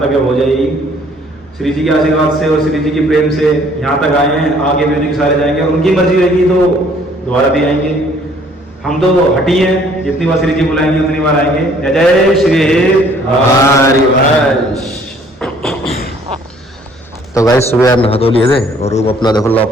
तक हो जाएगी। श्री जी के आशीर्वाद से और श्री जी के प्रेम से यहाँ तक आए हैं, आगे भी उनके सारे जाएंगे और उनकी मर्जी रहेगी तो दोबारा भी आएंगे। हम तो हटी हैं, जितनी बार श्री जी बुलाएंगे उतनी बार आएंगे। जय जय श्री हरिवंश। तो गाइस सुबह यार नहा धो लिए थे और रूम अपना देखो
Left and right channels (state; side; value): normal; both; correlation 0.59